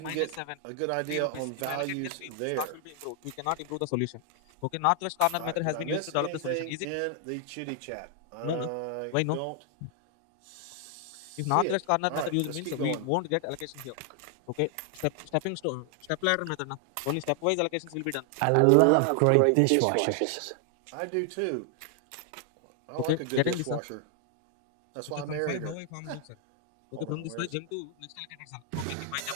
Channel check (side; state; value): both; different; correlation 0.00